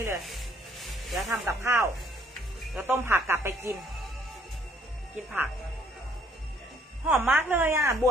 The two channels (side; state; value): both; normal; correlation 0.63